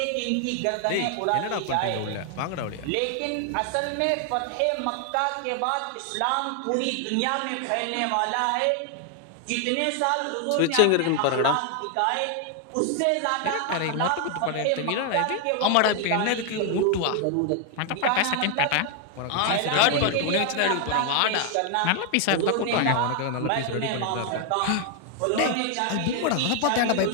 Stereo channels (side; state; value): both; different; correlation 0.00